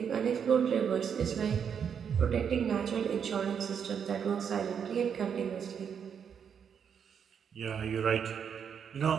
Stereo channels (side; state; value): left; quieter; 7.5 dB